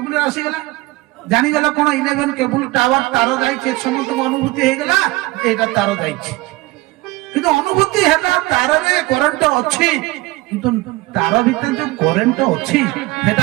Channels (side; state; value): left; quieter; 20.7 dB